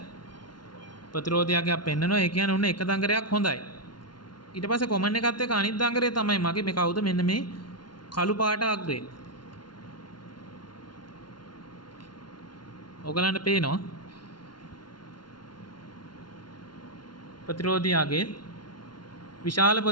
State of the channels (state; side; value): late; right; 0.71 ms